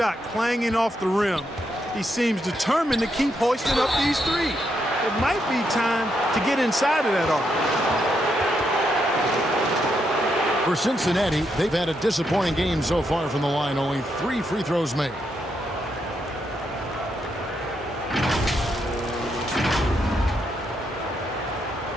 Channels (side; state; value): both; normal; correlation 0.80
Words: clanging off the rim, he seems determined to keep hoisting up these three. It might be time to get inside of that arc. For Cincinnati, they've had a disappointing game so far from the line. Only 3 free throws made.